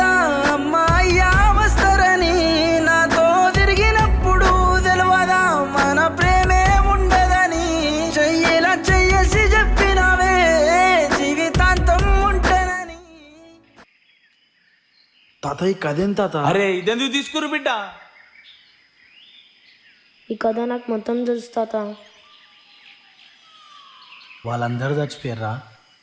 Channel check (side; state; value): both; identical; correlation 1.00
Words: తాత ఈ కదేం తాత? అరే ఇదెందుకు తీసుకురు బిడ్డ? ఈ కథ నాకు మొత్తం తెలుసు తాత. వాళ్ళందరూ చచ్చిపోయారా?